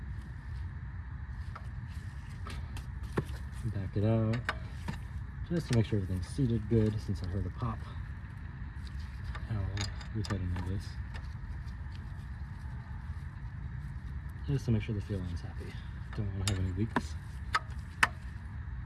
Back it out, just to make sure everything's seated good, since I heard a pop. I'll retighten all this, just to make sure the fuel line's happy. Don't want to have any leaks.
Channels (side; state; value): both; identical; correlation 1.00